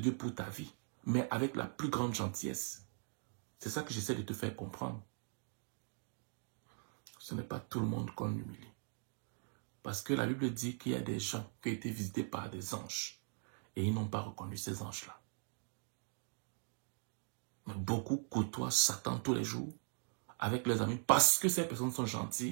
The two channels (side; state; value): left; silent; 51 dB below the other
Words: pour ta vie, mais avec la plus grande gentillesse. C'est ça que j'essaie de te faire comprendre. Ce n'est pas tout le monde qu'on humilie. Parce que la Bible dit qu'il y a des gens qui ont été visités par des anges et ils n'ont pas reconnu ces anges-là. Mais beaucoup côtoient Satan tous les jours avec leurs amis parce que ces personnes sont